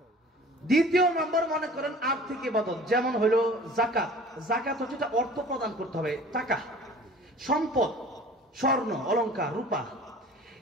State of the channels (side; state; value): both; normal; correlation 0.45